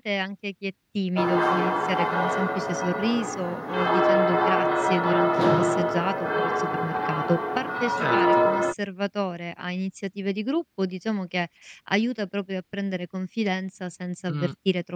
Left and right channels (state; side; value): identical; both; correlation 1.00